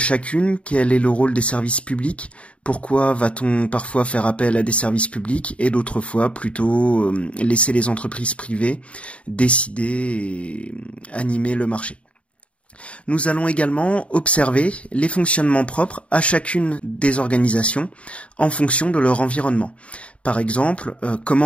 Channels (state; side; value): late; right; 0.062 ms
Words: Quel est le rôle des services publics? Pourquoi va-t-on parfois faire appel à des services publics et d'autres fois plutôt laisser les entreprises privées décider et animer le marché? Nous allons également observer les fonctionnements propres à chacune des organisations en fonction de leur environnement. Par exemple,